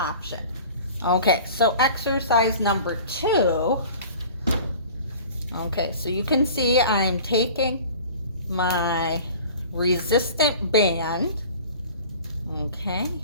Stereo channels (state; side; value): inverted; both; correlation -0.44